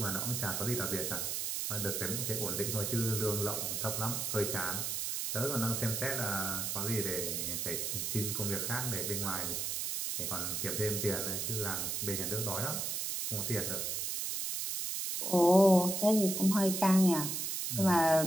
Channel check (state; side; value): noise; right; hiss, 1 dB below the sound